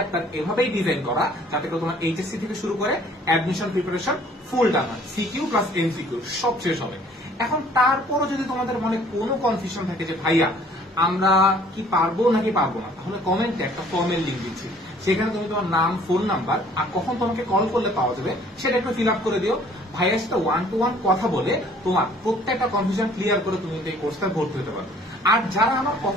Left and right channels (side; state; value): both; normal; correlation 0.56